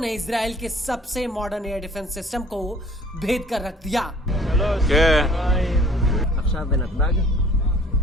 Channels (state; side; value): normal; both; correlation 0.53